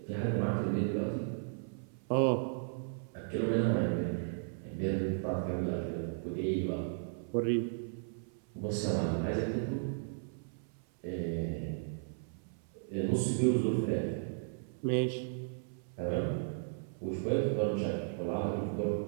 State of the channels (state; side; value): silent; left; 54 dB below the other